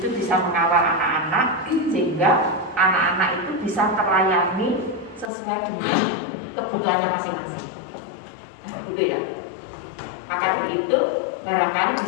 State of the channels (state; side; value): drops out; right; at 5.3 s